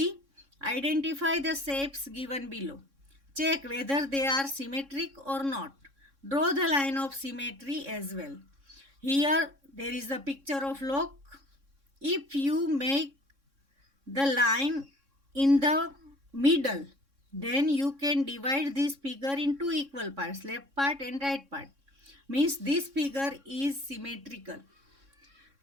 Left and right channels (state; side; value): late; left; 3.6 ms